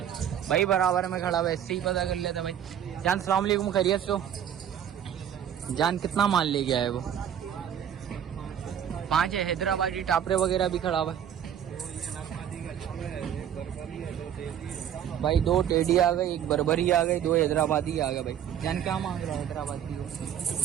है। भाई बराबर में खड़ा हुआ, इससे ही पता कर लेता भाई। जान सलाम अलैकुम, खैरियत से हो जान? कितना माल ले गया है वो? 5 है। हैदराबादी टापरे वगैरह भी खड़ा हुआ है भाई। 2 टेडी आ गए, 1 बर्बरी आ गई, 2 हैदराबादी आ गए भाई। जान क्या मांग रहा है हैदराबादी को?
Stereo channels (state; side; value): quieter; left; 9.5 dB